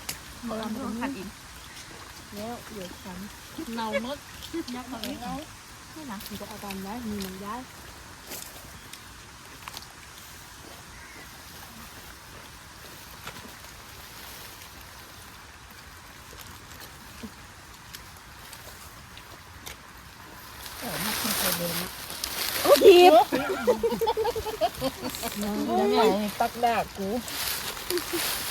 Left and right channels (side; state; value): both; identical; correlation 1.00